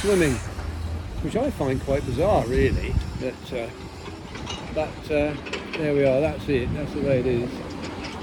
which I find quite bizarre, really. But there we are. That's it. That's the way it is.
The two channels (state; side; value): identical; both; correlation 1.00